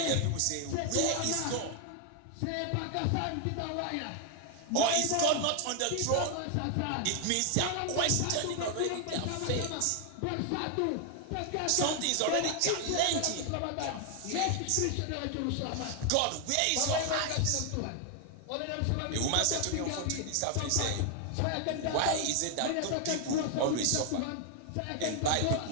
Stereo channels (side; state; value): both; different; correlation 0.00